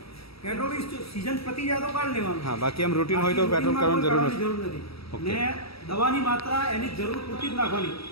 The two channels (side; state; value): right; late; 0.76 ms